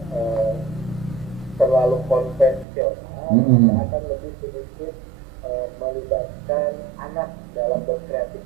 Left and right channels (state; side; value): drops out; left; at 2.7 s